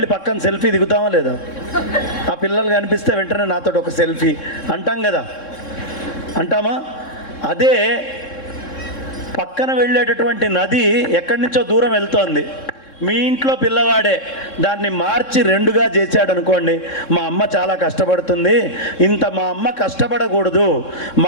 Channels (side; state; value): right; late; 3.6 ms